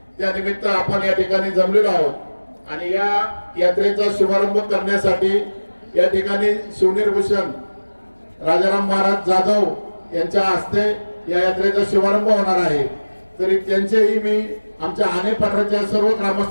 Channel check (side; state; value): both; inverted; correlation -1.00